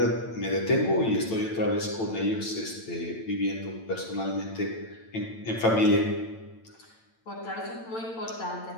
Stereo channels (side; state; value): right; late; 8.9 ms